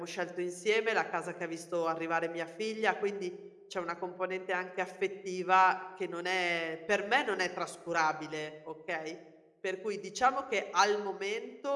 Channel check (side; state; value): both; identical; correlation 1.00